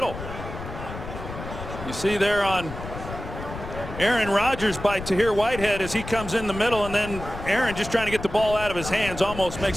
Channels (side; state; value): left; noise; rumble, 10 dB below the sound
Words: You see there on Aaron Rodgers by Tahir Whitehead as he comes in the middle, and then Aaron just trying to get the ball out of his hands almost makes